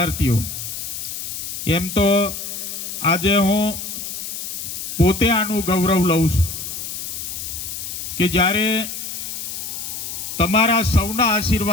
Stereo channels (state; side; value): noise; left; hiss, 6 dB below the sound